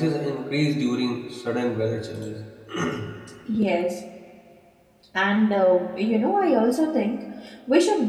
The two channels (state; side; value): identical; both; correlation 1.00